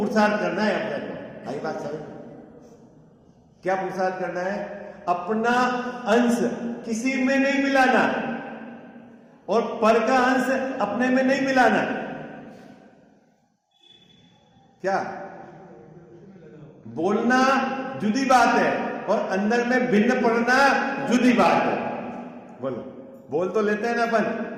करना है अपने को। आई बात समझ? क्या पुरुषार्थ करना है? अपना अंश किसी में नहीं मिलाना और पर का अंश अपने में नहीं मिलाना। क्या बोलना जुदी बात है और अंदर में भिन्न पढ़ना जुदी बात है। बोलो। बोल तो लेते हैं ना अपन,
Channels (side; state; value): both; identical; correlation 1.00